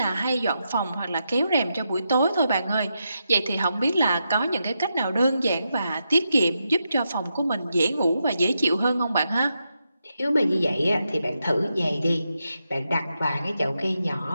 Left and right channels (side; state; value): both; inverted; correlation -0.85